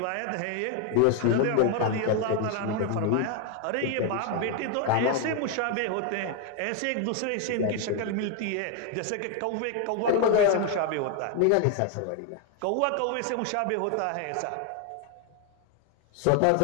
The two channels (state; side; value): different; both; correlation 0.01